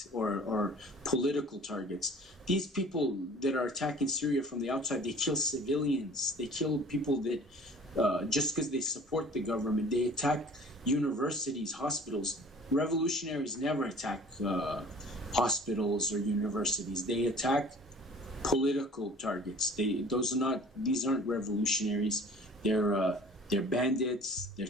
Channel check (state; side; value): normal; both; correlation 0.47